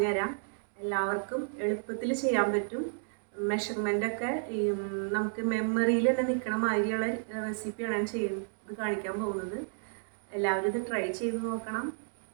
എല്ലാവർക്കും എളുപ്പത്തിൽ ചെയ്യാൻ പറ്റും. മെഷർമെൻ്റൊക്കെ നമുക്ക് മെമ്മറിയിൽ തന്നെ നിൽക്കണ മാതിരിയുള്ള റെസിപ്പിയാണ് ഞാൻ ചെയ്യുന്നത് കാണിക്കാൻ പോകുന്നത്. എല്ലാവരും ഇത് ട്രൈ ചെയ്ത് നോക്കണം.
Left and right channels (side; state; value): left; silent; digital silence